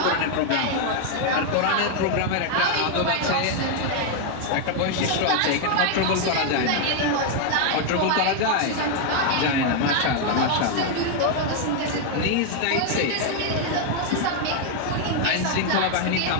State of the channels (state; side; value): different; both; correlation 0.00